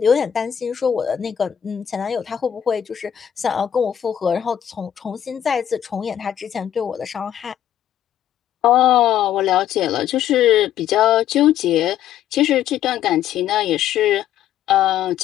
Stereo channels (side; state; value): right; quieter; 10.3 dB